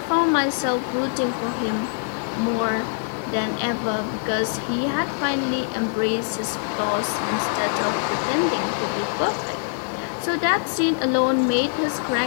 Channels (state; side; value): silent; right; digital silence